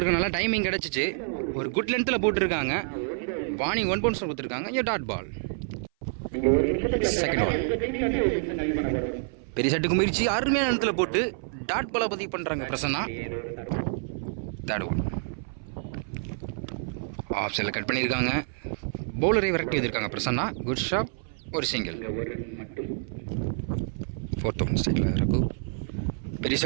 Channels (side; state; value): left; silent; 57 dB below the other